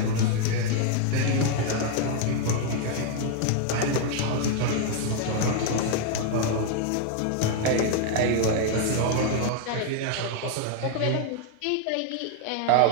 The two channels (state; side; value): different; both; correlation 0.00